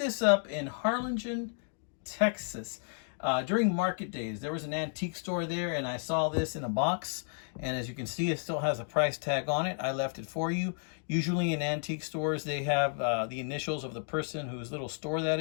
up in Harlingen, Texas. During market days, there was an antique store there, and I saw this in a box, and as you can see, it still has a price tag on it. I left it for you. Usually in antique stores, they have the initials of the person whose little store that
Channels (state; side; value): silent; right; 56 dB below the other